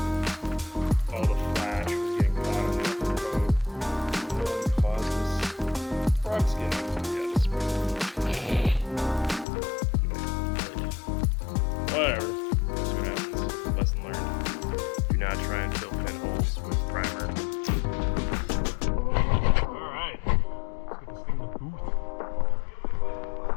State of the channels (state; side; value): drops out; right; at 9.5 s